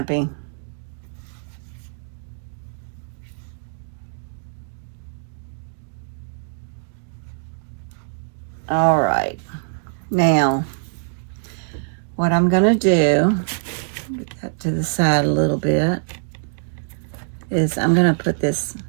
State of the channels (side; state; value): left; silent; digital silence